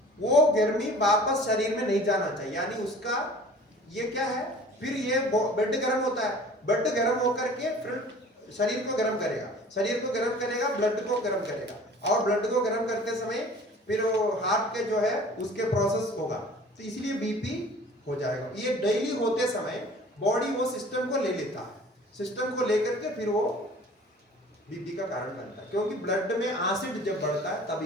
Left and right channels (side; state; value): both; normal; correlation 0.46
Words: वो गर्मी वापस शरीर में नहीं जाना चाहिए, यानी उसका ये क्या है, फिर ये बेड गर्म होता है, बेड गर्म होकर के फिर शरीर को गर्म करेगा, शरीर को गर्म करेगा, ब्लड को गर्म करेगा, और ब्लड को गर्म करते समय फिर वो हार्ट के जो है उसके प्रोसेस होगा, तो इसलिए बीपी हो जाएगा। ये डेली होते समय बॉडी वो सिस्टम को ले लेता है, सिस्टम को लेकर के फिर वो बीपी का कारण बनता है। क्योंकि ब्लड में एसिड जब बढ़ता है